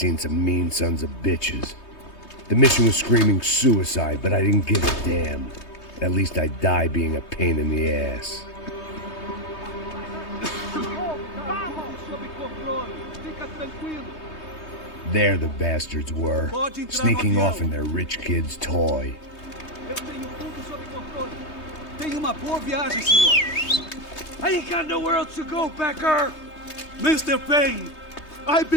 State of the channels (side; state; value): right; late; 3.2 ms